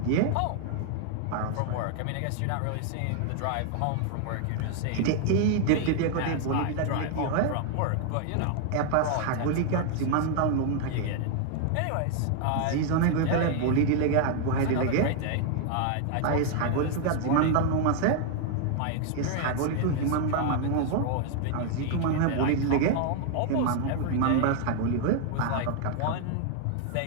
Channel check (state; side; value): different; both; correlation 0.00